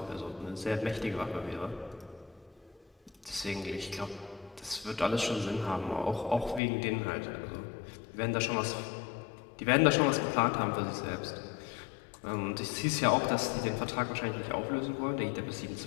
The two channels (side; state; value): right; drops out; at 6.6 s